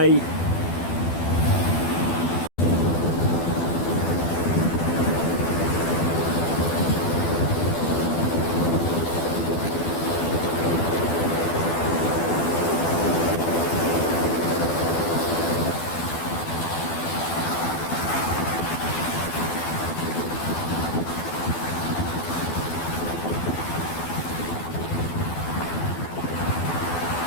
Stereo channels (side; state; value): right; late; 12 ms